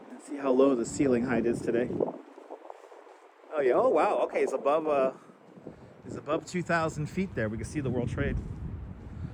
Let's see how low the ceiling height is today. Oh yeah, oh wow, okay, it's above 2,000 feet there. We can see the World Trade.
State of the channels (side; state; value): both; identical; correlation 1.00